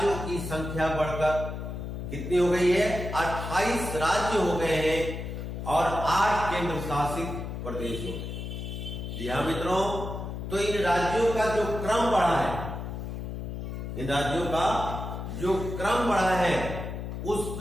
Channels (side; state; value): left; noise; hum, 6 dB below the sound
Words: की संख्या बढ़कर कितनी हो गई है? 28 राज्य हो गए हैं और 8 केंद्र शासित प्रदेश हो गए। जी हाँ मित्रों, तो इन राज्यों का जो क्रम बढ़ा है, इन राज्यों का जो क्रम बढ़ा है, उस